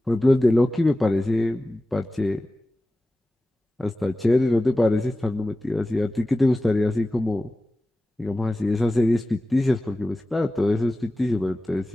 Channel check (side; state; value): both; normal; correlation 0.96